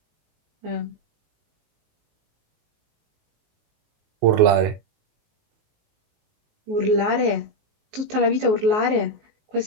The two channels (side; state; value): left; late; 19 ms